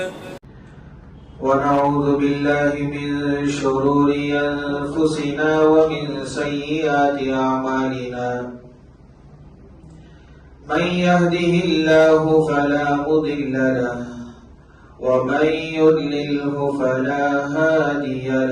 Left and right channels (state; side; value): identical; both; correlation 1.00